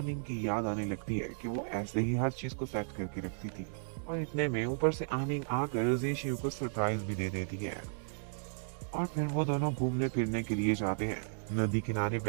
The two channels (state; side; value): silent; left; digital silence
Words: की याद आने लगती है कि वो ऐसे ही हर चीज को सेट करके रखती थी। और इतने में ऊपर से आनिंग आकर जी शियू को सरप्राइज भी दे देती है। और फिर वो दोनों घूमने फिरने के लिए जाते हैं। नदी किनारे